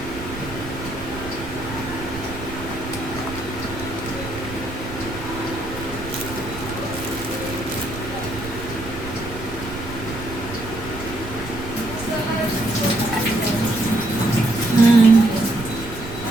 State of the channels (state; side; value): noise; right; rumble, 11 dB below the sound